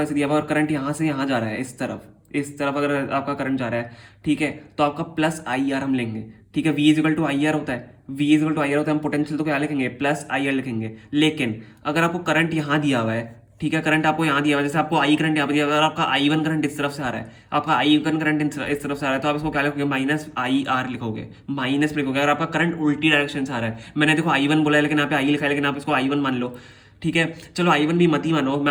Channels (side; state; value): both; identical; correlation 1.00